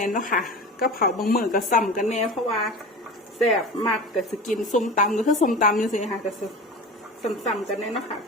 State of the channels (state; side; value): normal; both; correlation 0.32